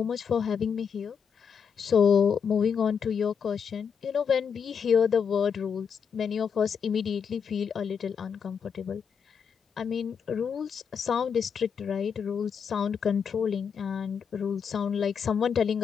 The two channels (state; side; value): quieter; right; 6.8 dB